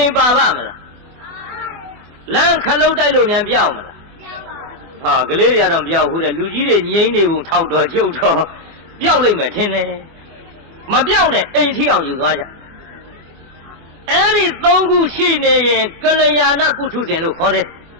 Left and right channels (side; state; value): left; late; 24 ms